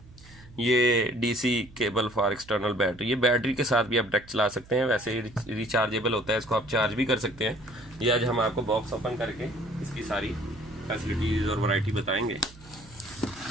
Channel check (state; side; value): noise; right; hum, 22 dB below the sound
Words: ये DC cable for external battery. ये बैटरी के साथ भी आप डायरेक्ट चला सकते हैं, वैसे ही रिचार्जेबल होता है, इसको आप चार्ज भी कर सकते हैं। ये आज हम आपको बॉक्स ओपन करके इसकी सारी फैसिलिटीज और वैरायटी बताएंगे।